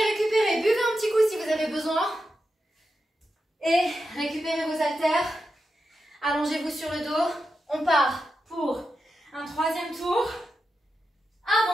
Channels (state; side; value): normal; both; correlation 0.89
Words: Buvez un petit coup si vous avez besoin. Et récupérez vos haltères. Allongez-vous sur le dos. On part pour un 3e tour.